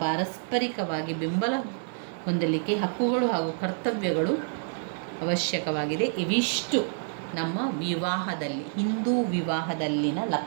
ಪಾರಸ್ಪರಿಕವಾಗಿ ಬೆಂಬಲ ಹೊಂದಲಿಕ್ಕೆ ಹಕ್ಕುಗಳು ಹಾಗೂ ಕರ್ತವ್ಯಗಳು ಅವಶ್ಯಕವಾಗಿದೆ. ಇವಿಷ್ಟು ನಮ್ಮ ವಿವಾಹದಲ್ಲಿ, ಹಿಂದೂ ವಿವಾಹದಲ್ಲಿನ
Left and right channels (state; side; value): silent; left; digital silence